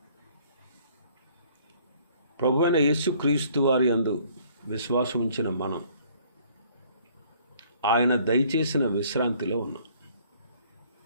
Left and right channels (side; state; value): both; inverted; correlation -0.59